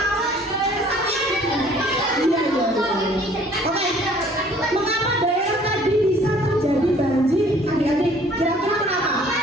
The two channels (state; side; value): normal; both; correlation 0.55